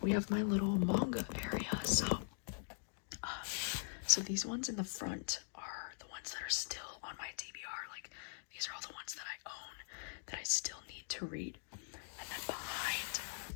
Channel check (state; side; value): silent; right; digital silence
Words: we have my little manga area. So these ones in the front are the ones that are still on my TBR. Like, these are all the ones that I own that I still need to read. And then behind